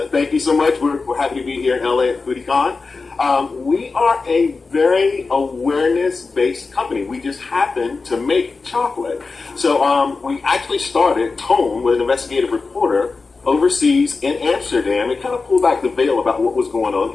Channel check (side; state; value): right; quieter; 4.2 dB